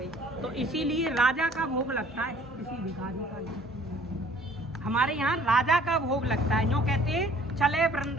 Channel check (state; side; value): normal; both; correlation 0.55